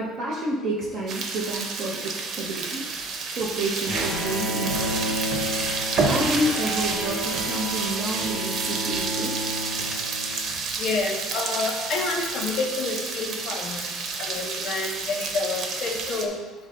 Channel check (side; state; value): both; normal; correlation 0.49